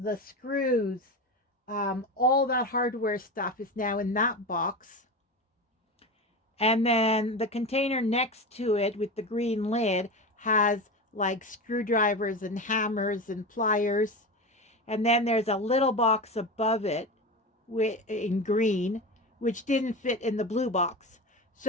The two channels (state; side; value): normal; both; correlation 0.24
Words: screws, all that hardware stuff is now in that box. And then the container next to it with the green lid has like screwdrivers and hammers and pliers. And then there's a little box above it in green, which didn't fit in the blue box.